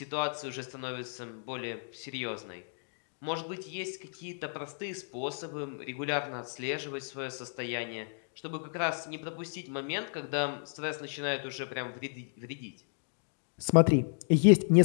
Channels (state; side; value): silent; right; digital silence